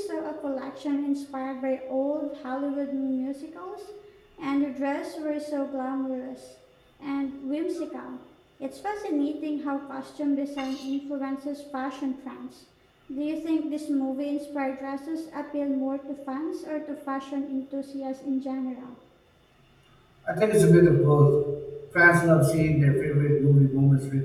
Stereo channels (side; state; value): both; identical; correlation 1.00